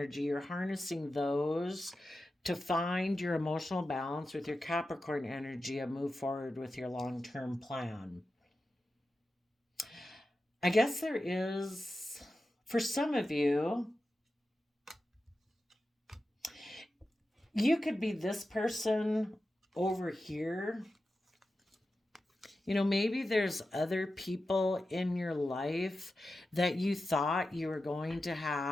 you're harnessing those to find your emotional balance with your Capricorn energy and move forward with your long term plan. I guess there is, for some of you, you could be this person over here. You know, maybe there's other people in your life that you thought you were going to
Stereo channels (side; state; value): both; normal; correlation 0.92